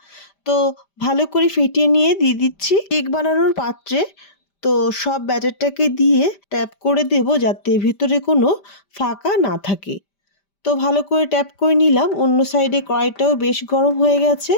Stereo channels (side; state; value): right; late; 5.0 ms